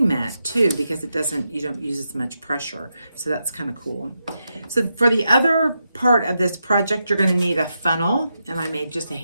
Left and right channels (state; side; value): inverted; both; correlation -0.85